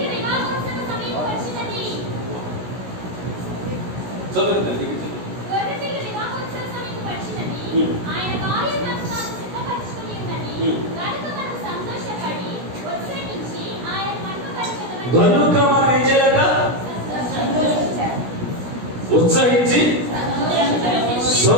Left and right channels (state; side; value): late; left; 16 ms